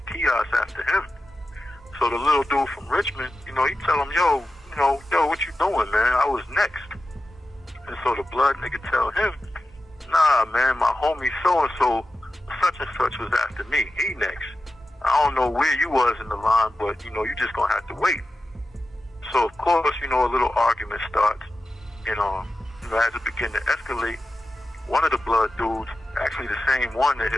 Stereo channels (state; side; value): normal; both; correlation 0.92